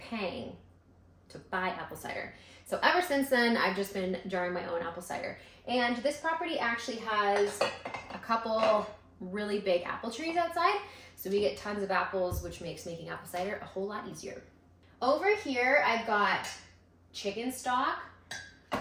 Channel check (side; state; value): both; identical; correlation 1.00